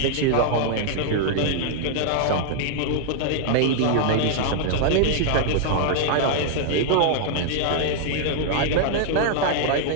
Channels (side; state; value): both; different; correlation -0.01